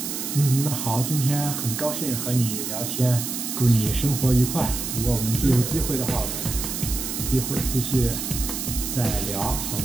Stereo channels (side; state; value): right; noise; hiss, 4 dB below the sound